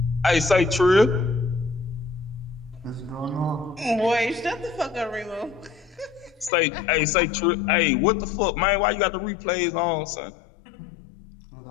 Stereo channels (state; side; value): drops out; right; at 6.5 s